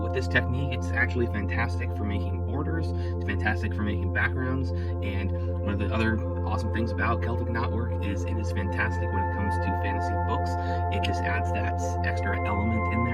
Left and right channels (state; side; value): identical; both; correlation 1.00